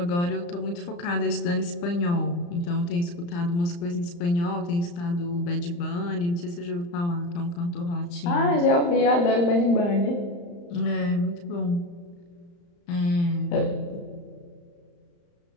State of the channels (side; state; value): right; late; 35 ms